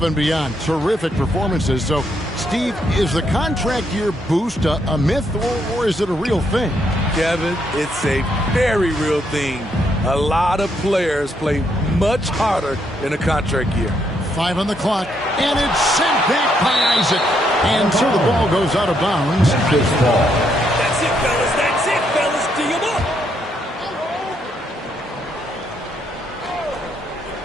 and beyond. Terrific performances. So, Steve, is the contract year boost a myth, or is it a real thing? Kevin, it's a very real thing. A lot of players play much harder in a contract year. 5 on the clock, and it's sent back by Isaac. And so the ball goes out of bounds. That's it, fellas. That's it, fellas. Do you look?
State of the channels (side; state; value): both; normal; correlation 0.75